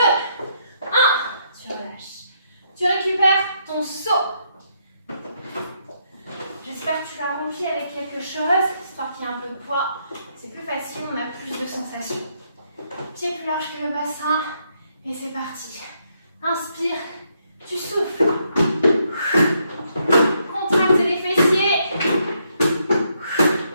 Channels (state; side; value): inverted; both; correlation -0.75